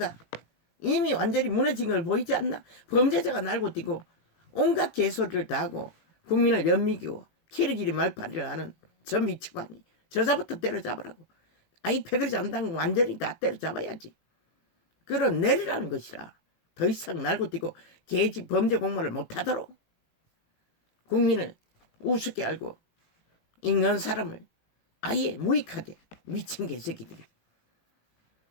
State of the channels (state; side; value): late; right; 18 ms